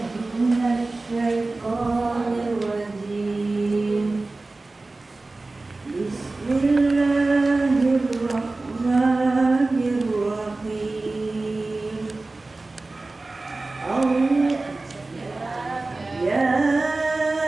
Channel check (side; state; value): left; quieter; 3.3 dB